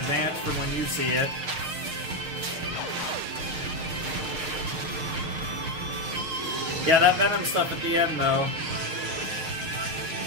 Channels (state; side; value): late; left; 6.5 ms